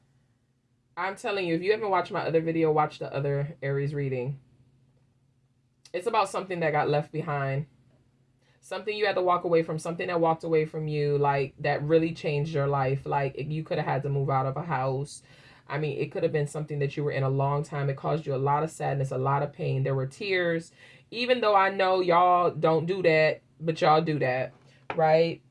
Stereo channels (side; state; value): both; identical; correlation 1.00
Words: I'm telling you, if you haven't watched my other video, watch the other Aries reading. It's about something that got left behind. Something you had to walk away from. Something that walked away from you, like, that really changed your life. Like, you could have had to move out of a house. I mean, it could have been something that you were in a long time. It caused you a lot of sadness, a lot of pain. There were tears. Even though I know y'all don't do that, but y'all do that, right?